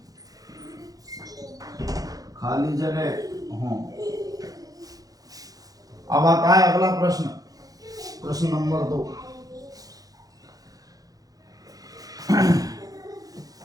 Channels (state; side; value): late; left; 0.18 ms